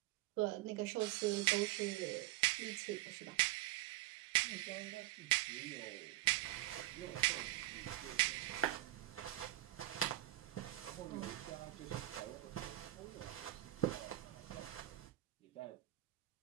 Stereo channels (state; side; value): quieter; left; 16.3 dB